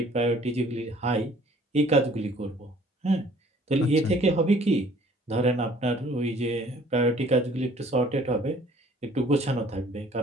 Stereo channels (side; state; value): both; normal; correlation 0.56